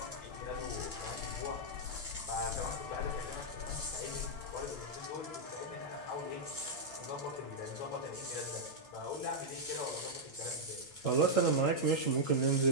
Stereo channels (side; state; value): right; late; 8.9 ms